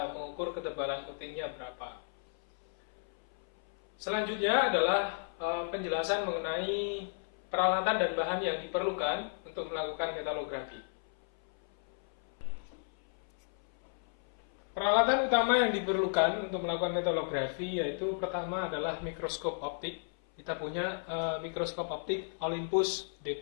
mengukur ketebalan coatingnya berapa. Selanjutnya adalah penjelasan mengenai peralatan dan bahan yang diperlukan untuk melakukan metalografi. Peralatan utama yang diperlukan untuk melakukan metalografi yaitu pertama adalah mikroskop optik. Kita punya mikroskop optik Olympus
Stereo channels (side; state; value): right; silent; 55 dB below the other